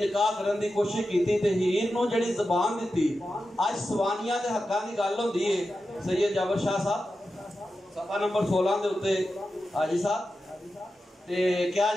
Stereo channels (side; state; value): both; normal; correlation 0.91